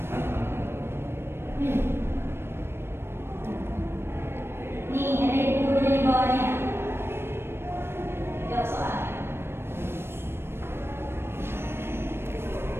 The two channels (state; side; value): late; left; 0.12 ms